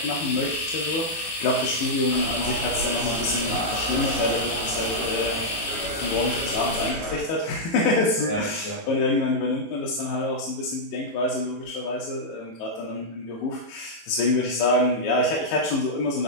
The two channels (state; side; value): late; right; 18 ms